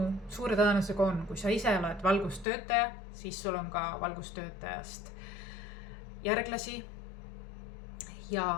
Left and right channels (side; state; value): right; drops out; at 2.5 s